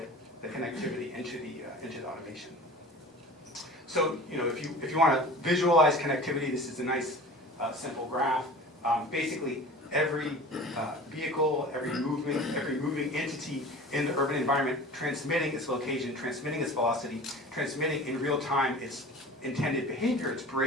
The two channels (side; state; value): both; normal; correlation 0.39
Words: the connectivity into the automation. So, you know, if you want to visualize connectivity, this is a nice simple graph. Basically, every vehicle, every moving entity in the urban environment transmitting its location, transmitting its velocity, transmitting in real time its intended behavior, its